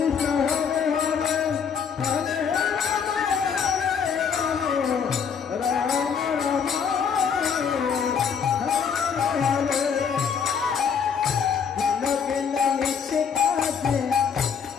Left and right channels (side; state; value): right; quieter; 6.8 dB